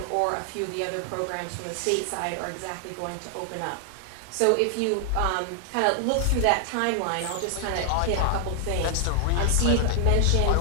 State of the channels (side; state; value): both; different; correlation 0.00